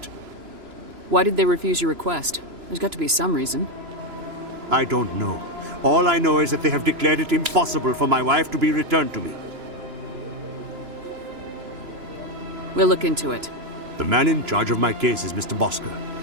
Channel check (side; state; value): left; late; 3.0 ms